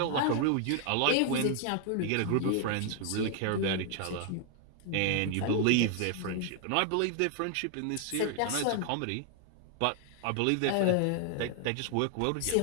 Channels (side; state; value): both; different; correlation 0.00